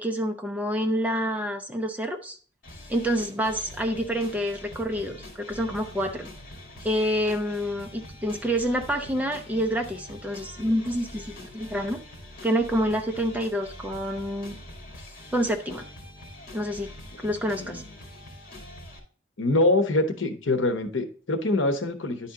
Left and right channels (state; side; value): normal; both; correlation 0.45